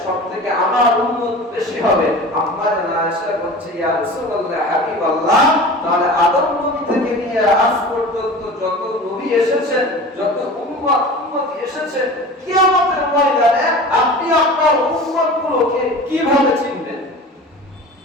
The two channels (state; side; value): normal; both; correlation 0.37